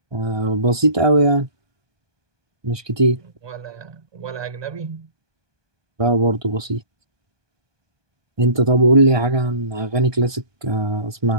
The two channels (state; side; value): late; left; 1.2 ms